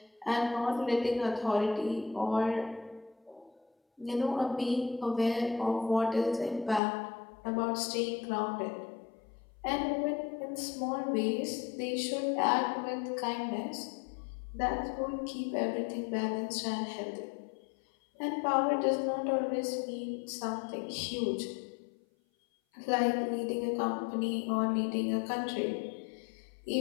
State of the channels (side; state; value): right; drops out; at 6.8 s